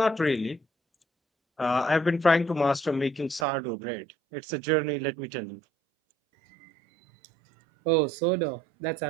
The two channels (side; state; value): left; drops out; at 3.5 s